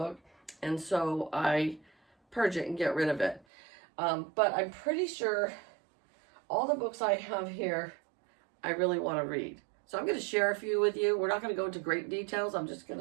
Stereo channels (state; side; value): drops out; left; at 3.5 s